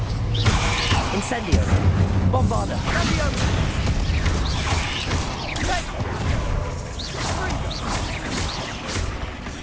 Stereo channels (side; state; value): both; identical; correlation 1.00